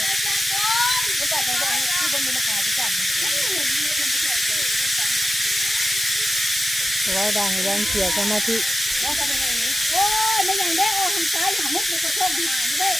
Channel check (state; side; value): normal; both; correlation 0.91